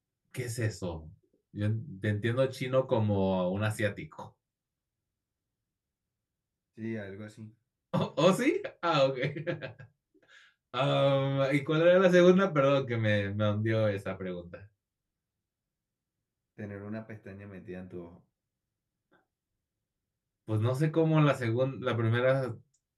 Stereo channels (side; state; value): both; identical; correlation 1.00